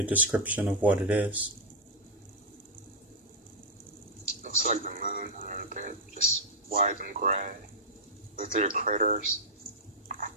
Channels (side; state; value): both; normal; correlation -0.07